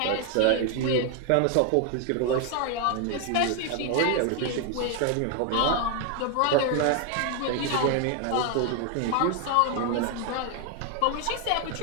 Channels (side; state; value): both; different; correlation 0.01